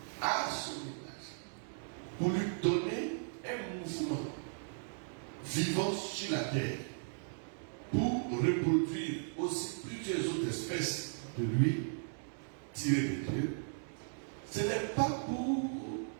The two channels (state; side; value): silent; left; digital silence